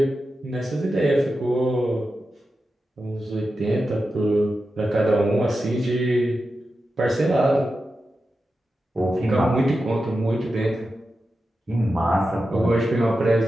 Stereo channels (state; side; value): normal; both; correlation 0.91